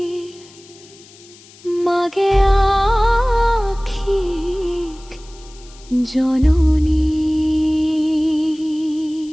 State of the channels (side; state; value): left; noise; hiss, 24 dB below the sound